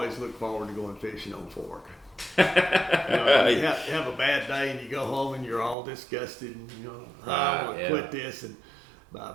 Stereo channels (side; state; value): left; drops out; at 5.8 s